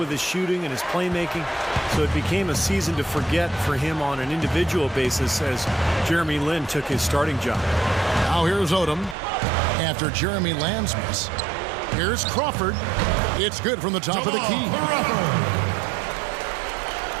his shooting and his playmaking, so it became a season to forget for him on an individual basis as Jeremy Lin took his starting job. Now here's Odom. After Jeremy Lamb's miss, here's Crawford. It's good from the top of the key.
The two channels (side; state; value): left; drops out; at 9.2 s